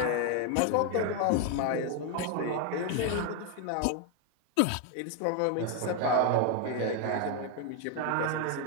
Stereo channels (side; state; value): both; different; correlation 0.01